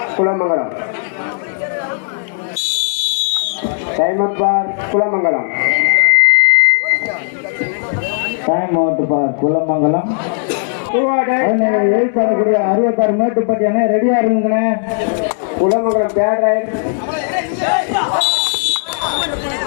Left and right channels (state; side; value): silent; right; digital silence